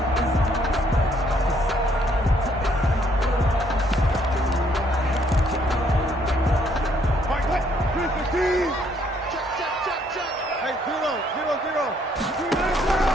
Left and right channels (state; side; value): normal; both; correlation 0.67